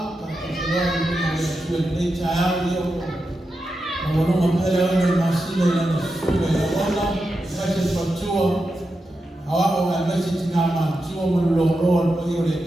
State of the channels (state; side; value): normal; both; correlation 0.89